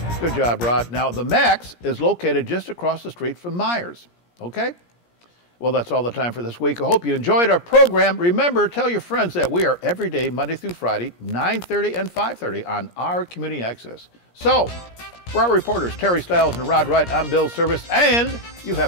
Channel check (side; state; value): right; late; 17 ms